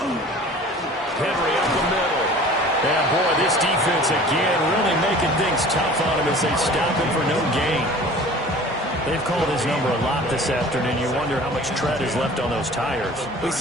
up the middle. And boy, this defense again really making things tough on him as they stop him for no gain. They've called his number a lot this afternoon. You wonder how much tread is left on those tires. We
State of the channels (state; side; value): normal; both; correlation 0.44